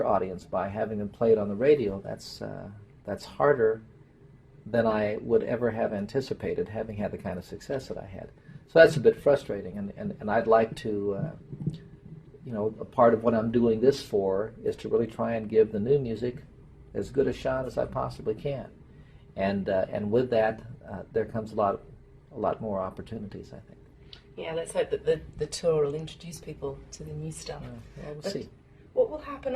audience by having them played on the radio, that's harder than I would ever have anticipated, having had the kind of success that I had. So that's a bit frustrating, and I'd like to, a part of what I'm doing this for is to really try and give the new music as good a shot as I possibly can, and with that, there comes a lot more opportunities, I think. Yeah, let's hope that the tour will introduce people to the new stuff. Well, we'll see. What will happen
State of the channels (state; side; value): identical; both; correlation 1.00